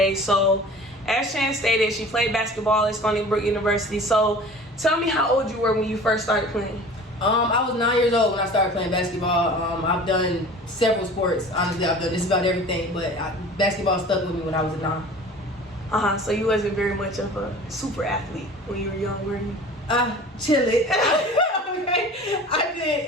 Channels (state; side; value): normal; both; correlation 0.42